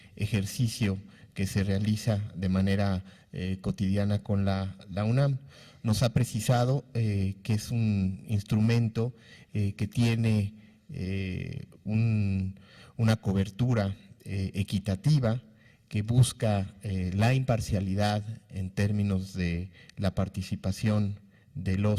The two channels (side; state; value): both; identical; correlation 1.00